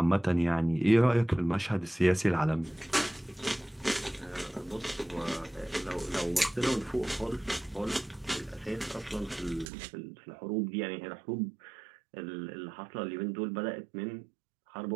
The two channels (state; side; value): drops out; left; at 9.7 s